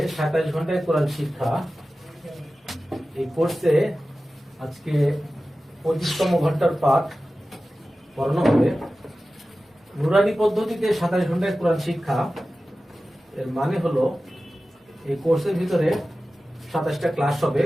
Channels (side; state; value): both; normal; correlation 0.95